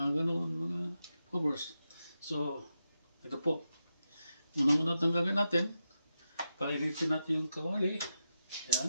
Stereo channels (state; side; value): inverted; both; correlation -0.88